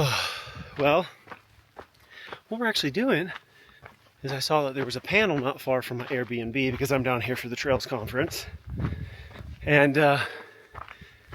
well, what we're actually doing is I saw that there was a panel not far from my Airbnb because I'm down here for the Trails Conference. And I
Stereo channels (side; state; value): both; identical; correlation 1.00